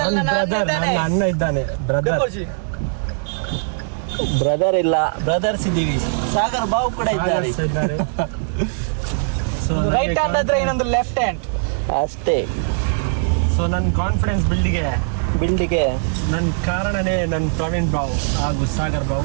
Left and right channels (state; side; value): silent; left; 59 dB below the other